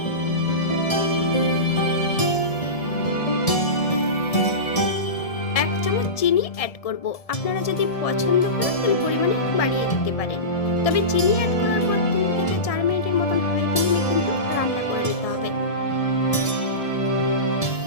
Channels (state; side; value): late; right; 1.7 ms